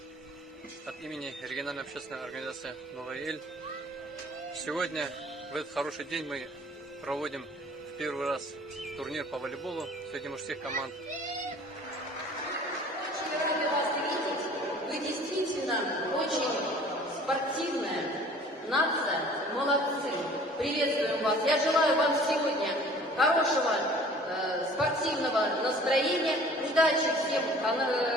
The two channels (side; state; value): both; normal; correlation 0.49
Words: от имени региональной общественной организации «Новая Эль». Сегодня, в этот хороший день, мы проводим в первый раз турнир по волейболу среди мужских команд. Рады вас видеть. Вы действительно очень спортивная нация. Молодцы. Приветствуем вас. Я желаю вам сегодня хорошего спортивного настроения, удачи всем